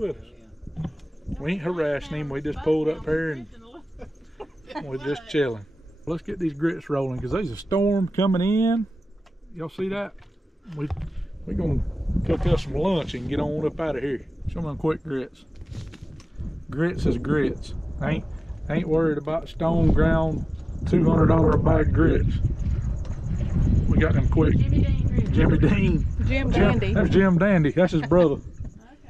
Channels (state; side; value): normal; both; correlation 0.98